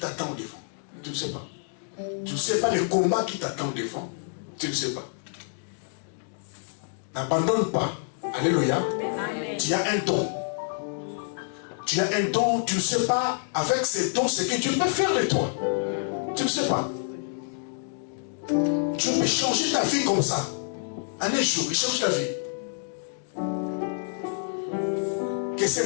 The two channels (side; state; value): right; silent; digital silence